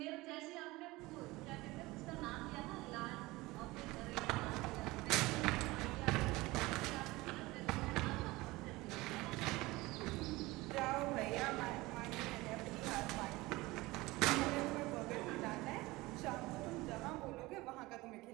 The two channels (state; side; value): quieter; left; 20.8 dB